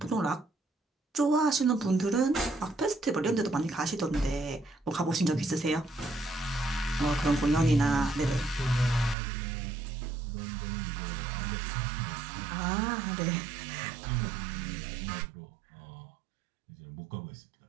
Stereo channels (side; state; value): left; drops out; at 9.2 s